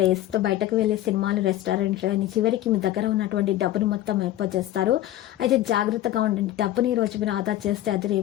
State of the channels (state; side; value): quieter; right; 13.7 dB